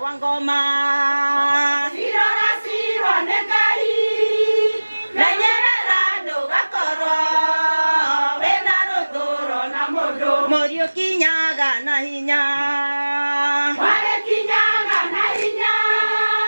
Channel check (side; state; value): both; inverted; correlation -1.00